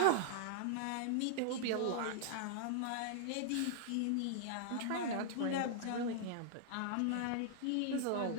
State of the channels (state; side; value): different; both; correlation -0.01